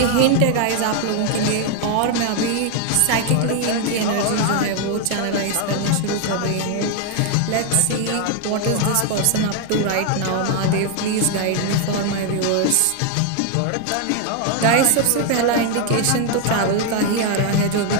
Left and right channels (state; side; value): different; both; correlation 0.01